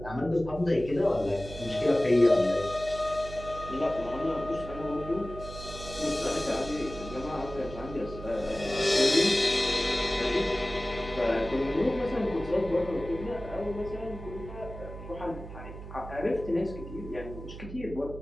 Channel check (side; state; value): right; noise; hum, 12 dB below the sound